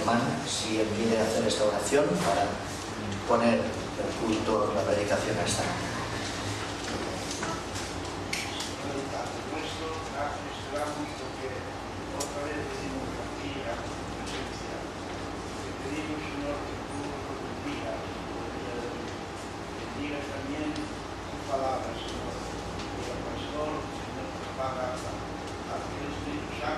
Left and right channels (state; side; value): identical; both; correlation 1.00